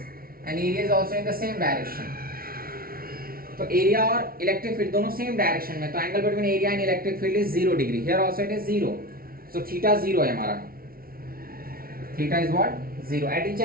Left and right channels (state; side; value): late; left; 0.43 ms